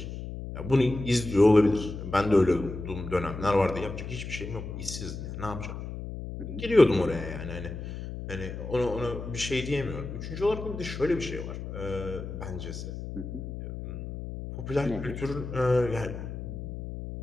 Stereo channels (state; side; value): noise; left; hum, 8 dB below the sound